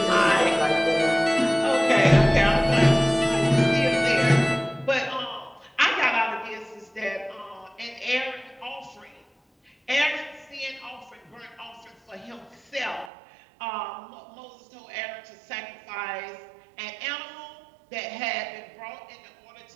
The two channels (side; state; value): left; drops out; at 13.1 s